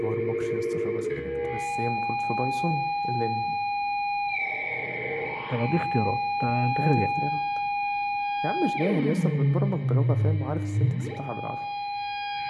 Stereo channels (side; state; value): both; identical; correlation 1.00